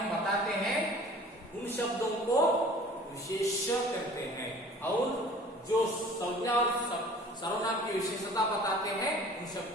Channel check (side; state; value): both; normal; correlation 0.47